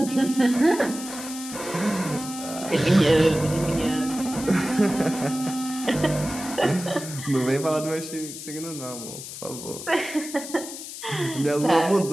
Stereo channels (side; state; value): left; noise; hiss, 10 dB below the sound